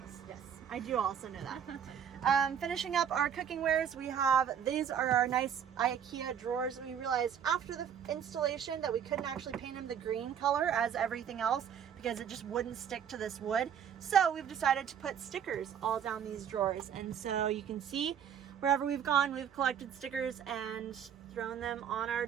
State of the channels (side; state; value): left; quieter; 8.5 dB